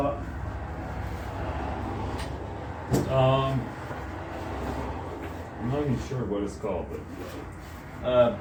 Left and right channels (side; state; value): both; identical; correlation 1.00